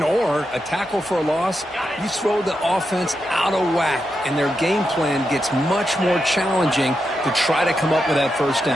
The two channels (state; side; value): normal; both; correlation 0.86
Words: or a tackle for a loss, you throw the offense out of whack, and their game plan gets much more challenging to try to come up with that first